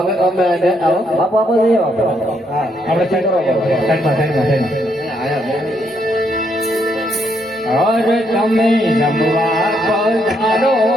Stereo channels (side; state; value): both; normal; correlation 0.74